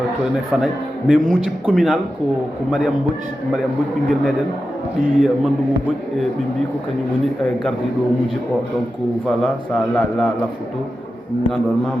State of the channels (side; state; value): both; normal; correlation 0.91